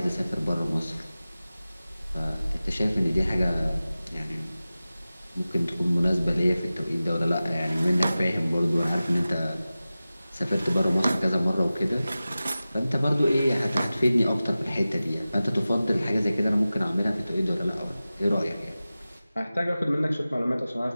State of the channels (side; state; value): both; inverted; correlation -0.96